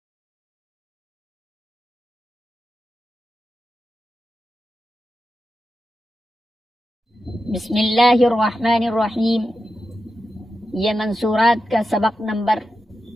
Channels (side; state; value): both; normal; correlation 0.90